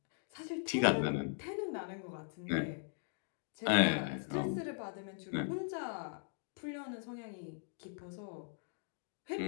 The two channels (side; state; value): right; silent; digital silence